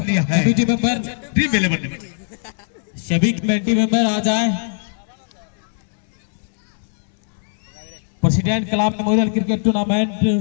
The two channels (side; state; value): right; silent; 65 dB below the other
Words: मेंबर ड्रीम 11 में सभी कमेटी मेंबर आ जाए। प्रेसिडेंट कलाम मेमोरियल क्रिकेट टूर्नामेंट